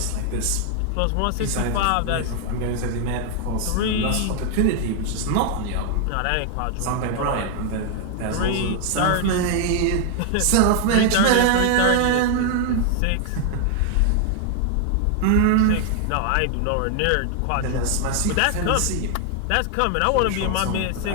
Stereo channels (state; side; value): different; both; correlation 0.00